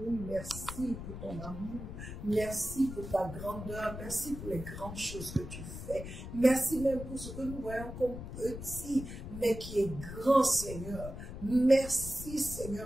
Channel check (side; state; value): left; noise; rumble, 9 dB below the sound